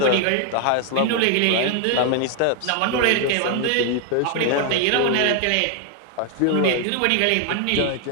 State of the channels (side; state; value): both; different; correlation 0.00